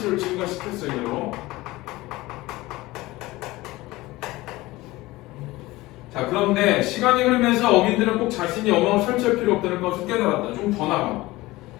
증가시켰어 이대로. 자, 그런데 시간이 흐르면서 어민들은 꼭 자신이 어망을 설치할 필요 없다는 것을 깨달았다. 좀 더 나가.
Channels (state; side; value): quieter; right; 19.5 dB